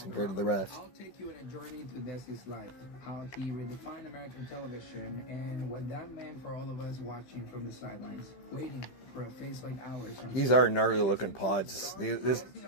compared to the rest. I'll take you on a journey to Desi's life, how he redefined American television, and what that meant for all of us watching from the sidelines, waiting for a face like ours. These are gnarly looking pods. These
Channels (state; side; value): late; right; 15 ms